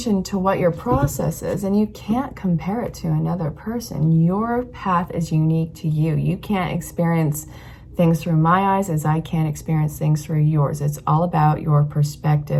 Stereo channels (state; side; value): identical; both; correlation 1.00